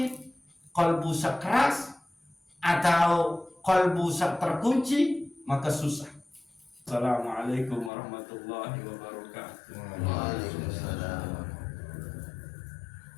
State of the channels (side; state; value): right; drops out; at 7.9 s